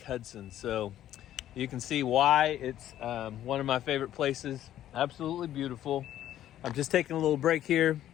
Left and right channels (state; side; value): quieter; right; 12.1 dB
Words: Hudson. So you can see why it's one of my favorite places. Absolutely beautiful. I'm just taking a little break here,